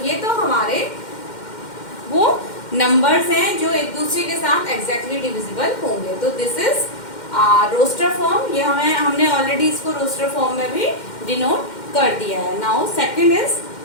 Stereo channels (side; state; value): right; late; 2.1 ms